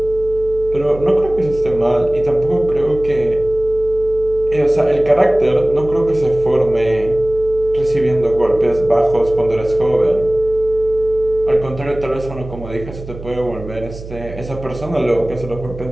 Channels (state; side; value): noise; right; hum, 13 dB below the sound